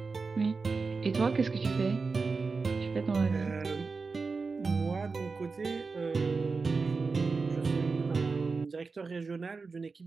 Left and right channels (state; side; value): quieter; left; 4.4 dB